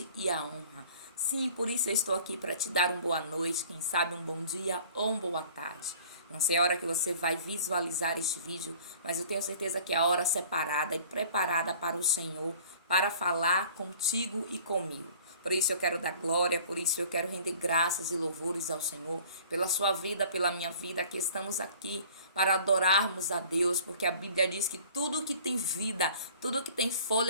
e a honra. Sim, por isso eu estou aqui para te dar uma boa noite, quem sabe um bom dia ou uma boa tarde. Não sei a hora que você vai visualizar este vídeo, mas eu tenho certeza que é a hora separada e preparada para o Senhor, para falar contigo e comigo. Por isso eu quero dar glória, por isso eu quero render graças e louvores ao Senhor, pela sua vida, pela minha vida, que estamos aqui para adorarmos a Deus, porque a Bíblia diz que tudo que tem vida, tudo que tem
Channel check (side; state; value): both; inverted; correlation -0.48